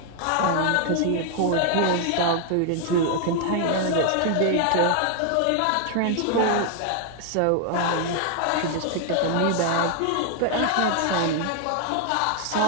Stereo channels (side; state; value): both; different; correlation 0.00